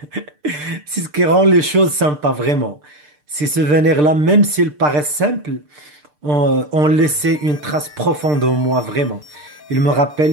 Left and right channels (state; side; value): late; left; 6.7 ms